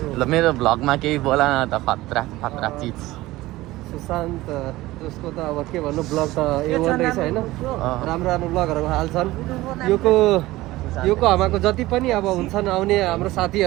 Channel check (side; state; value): left; quieter; 18.0 dB